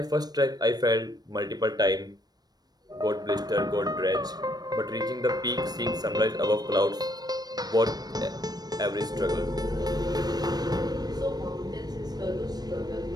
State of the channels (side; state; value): left; late; 0.19 ms